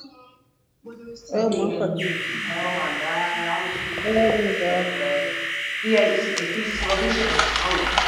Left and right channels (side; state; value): both; identical; correlation 1.00